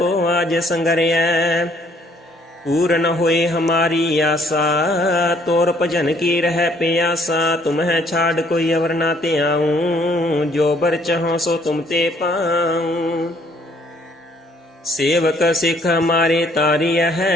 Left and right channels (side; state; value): both; normal; correlation 0.63